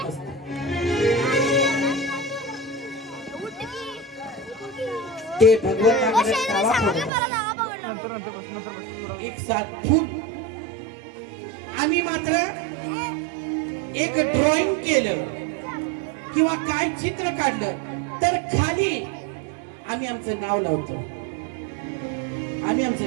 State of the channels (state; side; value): drops out; left; at 7.1 s